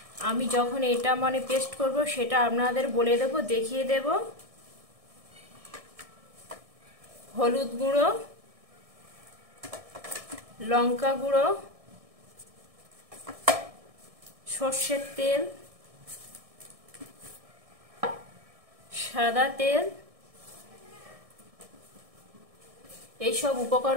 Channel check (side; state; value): left; late; 1.6 ms